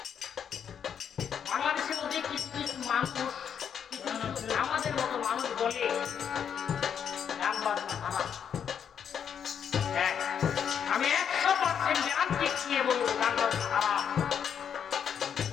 কিছু কিছু মানুষ, আমাদের মতো মানুষ বলে গান বাজনা খারাপ। হ্যাঁ, আমি 100% গ্যারান্টি দিয়ে বলবো গান বাজনা খারাপ,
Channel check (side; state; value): right; quieter; 8.0 dB